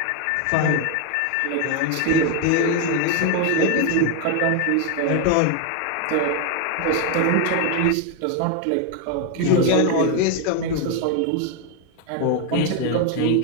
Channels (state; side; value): different; both; correlation 0.01